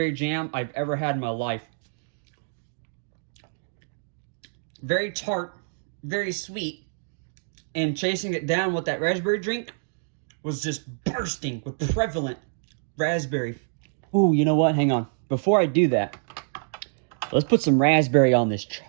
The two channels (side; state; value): left; silent; digital silence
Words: jam I've ever had in my life. Very tart, very sweet, and chasing it down with that raspberry drink was just bursting with prevalent raspberry. Ooh, you know what? Hang on. Before I do that, let's put some raspberry on this